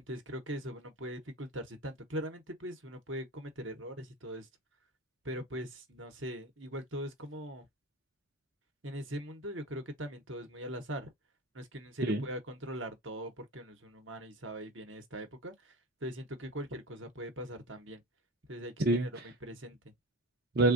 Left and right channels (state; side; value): normal; both; correlation 0.28